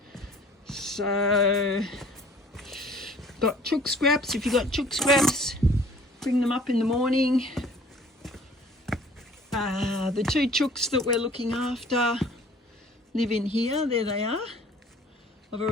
So got chook scraps. If you've got chook scraps, bring them up in the morning. The 2 chooks that we're looking after live in here. There they are. I've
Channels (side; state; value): both; normal; correlation 0.52